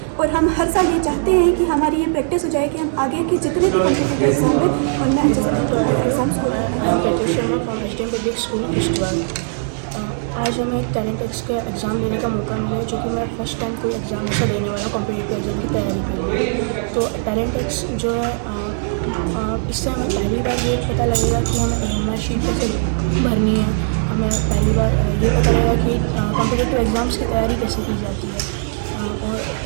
और हम हर साल ये चाहते हैं कि हमारी ये प्रैक्टिस हो जाए कि हम आगे के जितने भी कम्पिटिटिव एग्ज़ाम हैं उनमें अच्छे से एग्ज़ाम्स हो रहे हैं। Sharma from HDM public school Kishtwar. आज हमें एक टैलेंटेक्स का एग्ज़ाम देने का मौका मिला है जो कि मैं फर्स्ट टाइम कोई एग्ज़ाम ऐसा देने वाला कॉम्पिटिटिव एग्ज़ाम की तैयारी कर रही हूँ। तो टैलेंटेक्स जो है इससे हमें पहली बार ये पता लगेगा कि हमें OMR शीट कैसे भरनी है। हमें पहली बार ये पता लगेगा कि कॉम्पिटिटिव एग्ज़ाम्स की तैयारी कैसे की जाती है। और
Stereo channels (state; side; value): silent; left; 56 dB below the other